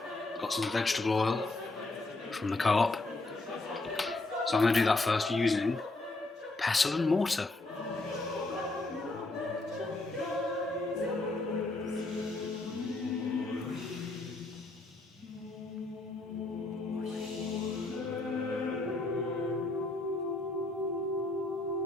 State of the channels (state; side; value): quieter; right; 3.1 dB